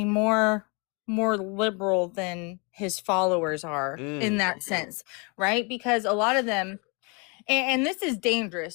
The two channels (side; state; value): right; quieter; 32.5 dB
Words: more liberal than his followers are in that sense, right? Because a lot of them, and this is